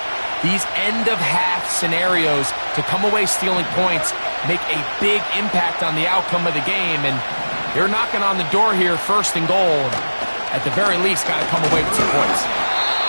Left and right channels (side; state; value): both; inverted; correlation -1.00